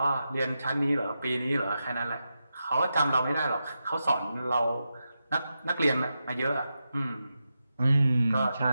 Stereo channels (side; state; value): both; inverted; correlation -0.89